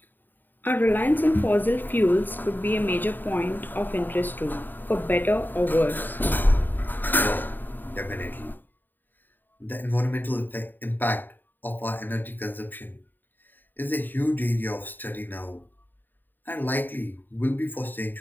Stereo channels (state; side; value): late; right; 0.091 ms